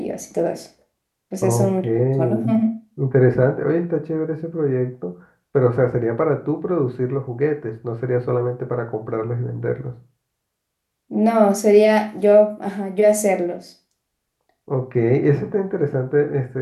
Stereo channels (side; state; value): both; identical; correlation 1.00